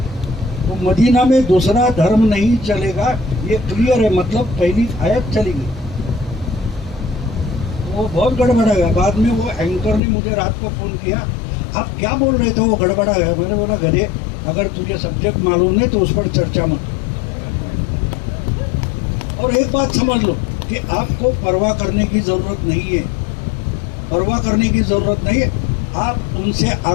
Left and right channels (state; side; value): drops out; right; at 10.0 s